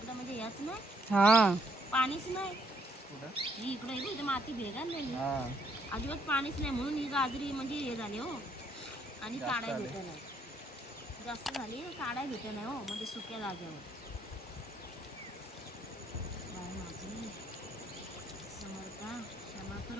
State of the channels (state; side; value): normal; both; correlation 0.70